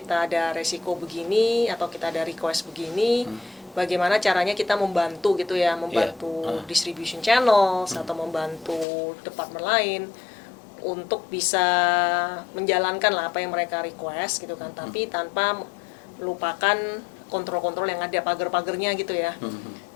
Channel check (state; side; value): drops out; right; at 8.8 s